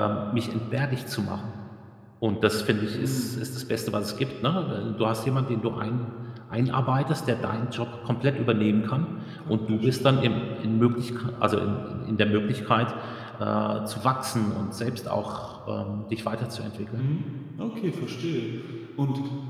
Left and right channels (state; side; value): identical; both; correlation 1.00